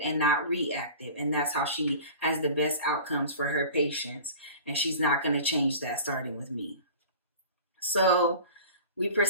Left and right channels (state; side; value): inverted; both; correlation -0.39